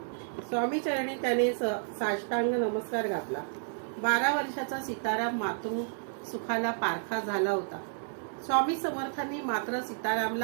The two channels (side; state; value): left; silent; digital silence